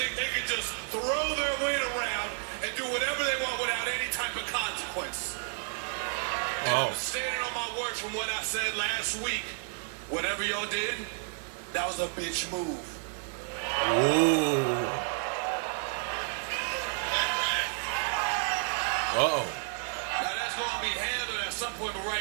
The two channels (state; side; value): silent; left; 57 dB below the other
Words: they can just throw their weight around and do whatever they want without any type of consequence. And I'm standing on my words from what I said last week. Whatever y'all did, that was a bitch move. Ooh. Uh-oh. Now that's going to be handled at some point, but